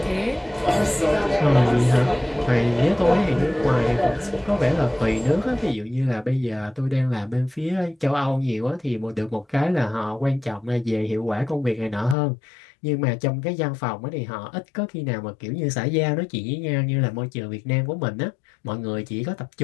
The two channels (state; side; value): drops out; right; at 12.2 s